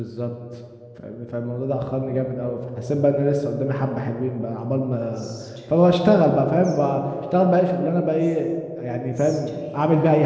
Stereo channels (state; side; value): identical; both; correlation 1.00